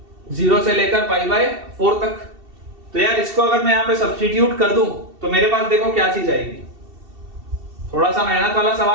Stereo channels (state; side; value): late; left; 2.7 ms